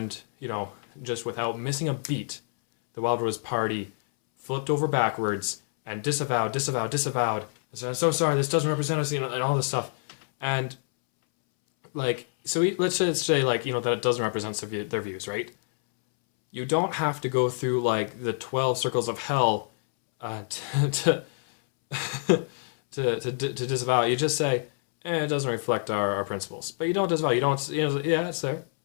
just without missing a beat, the Wildrose Party flipped over backwards and disavowed. I said, I'm so sorry, this doesn't represent us, and all this stuff. And, let's just say, that it doesn't represent their views, right? You don't have to go through, the 12 circles of hell to disavow it. You just say, it doesn't reflect our principles. But you don't disavow. You don't, yeah, it's there.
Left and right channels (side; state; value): right; silent; 60 dB below the other